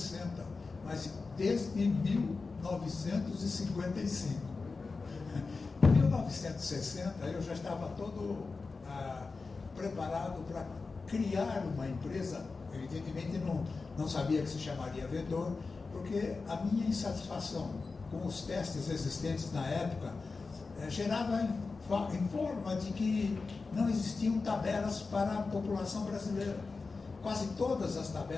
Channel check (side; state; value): right; quieter; 4.2 dB